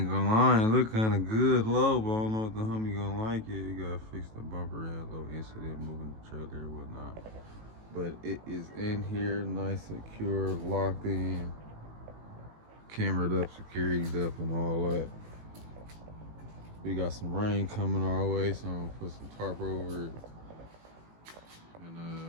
gonna lie, it look kind of good low, but I don't know if the homie gonna like it. You gotta fix the bumper, had a little incident moving the trailer and whatnot. But it is in here, nice, secure, locked in, cameraed up, security's up, and all that. We got some rain coming our way, so I'm gonna put some tarp over it.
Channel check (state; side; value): late; left; 18 ms